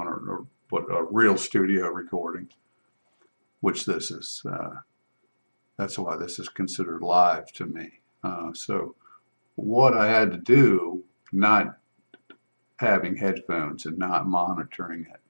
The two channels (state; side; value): inverted; both; correlation -1.00